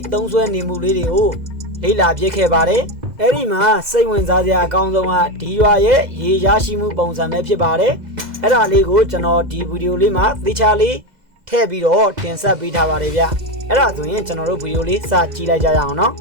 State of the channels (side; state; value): left; late; 2.0 ms